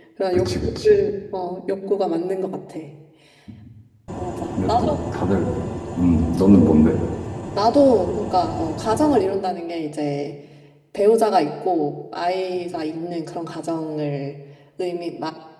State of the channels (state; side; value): identical; both; correlation 1.00